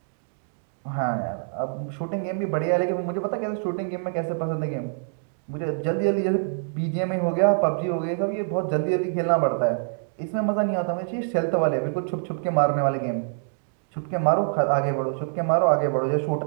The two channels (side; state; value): left; silent; digital silence